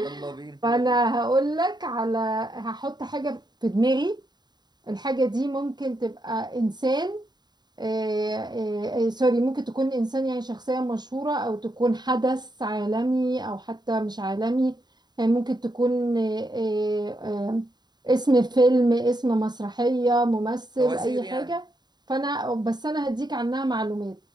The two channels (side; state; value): left; late; 0.20 ms